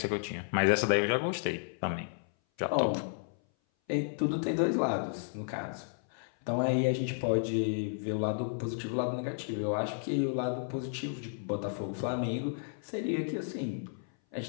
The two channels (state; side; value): silent; right; 56 dB below the other